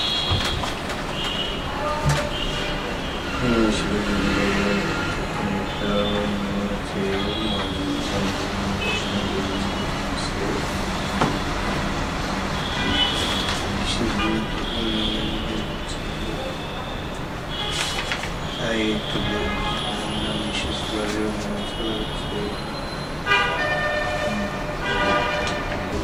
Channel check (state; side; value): identical; both; correlation 1.00